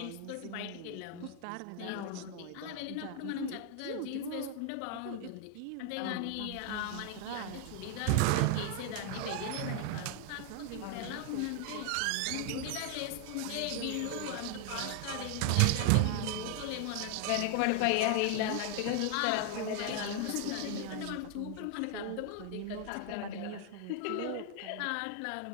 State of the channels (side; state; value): both; different; correlation 0.00